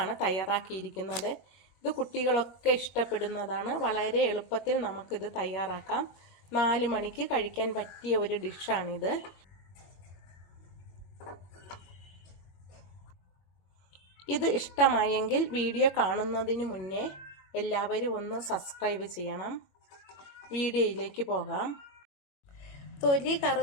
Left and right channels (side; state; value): right; late; 21 ms